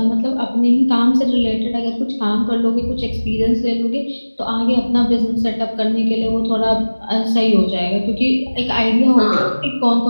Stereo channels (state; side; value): inverted; both; correlation -1.00